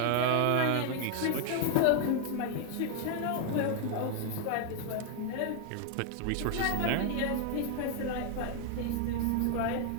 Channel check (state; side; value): different; both; correlation 0.00